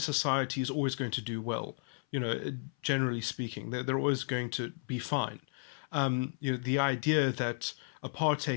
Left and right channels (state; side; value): silent; right; 55 dB below the other